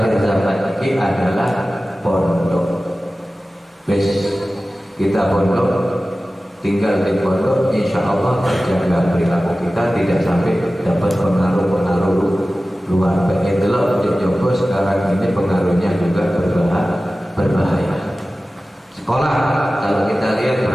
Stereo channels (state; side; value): normal; both; correlation 0.96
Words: zaman ini adalah pondok. Bes kita pondok, tinggal di pondok, insya Allah terjaga perilaku kita, tidak sampai dapat pengaruh-pengaruh luar. Itulah Jogo sekarang ini pengaruhnya juga berbahaya. Sekolah, kalau kita lihat